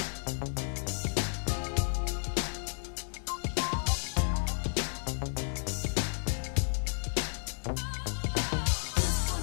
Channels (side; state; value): right; silent; digital silence